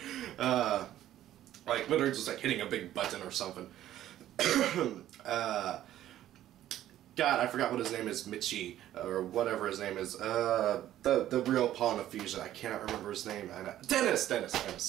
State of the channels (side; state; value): left; quieter; 12.7 dB